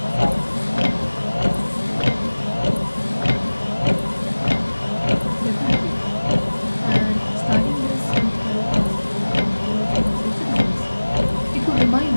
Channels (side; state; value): both; inverted; correlation -1.00